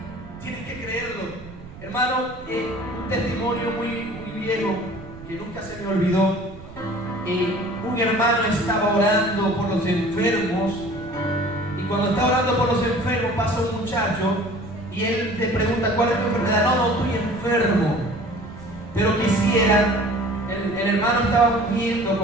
Tienes que creerlo. Hermano, un testimonio muy viejo que nunca se me olvidó. Un hermano estaba orando por los enfermos, y cuando está orando por los enfermos pasa un muchacho y él le pregunta: ¿cuál es tu enfermedad? No, estoy enfermo, pero quisiera. El hermano estaba ungiendo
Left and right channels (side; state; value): right; noise; rumble, 17 dB below the sound